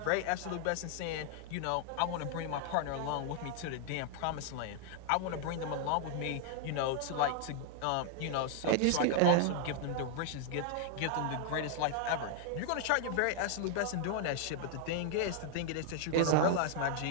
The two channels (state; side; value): different; both; correlation 0.00